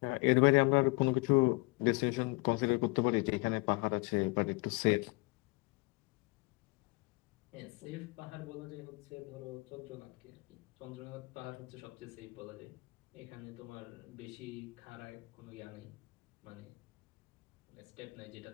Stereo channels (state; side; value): quieter; right; 26.1 dB